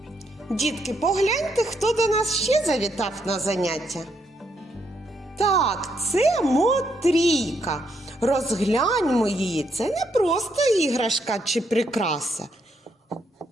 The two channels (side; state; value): both; normal; correlation 0.76